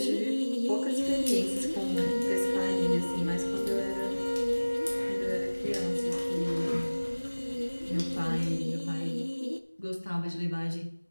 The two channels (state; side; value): inverted; both; correlation -1.00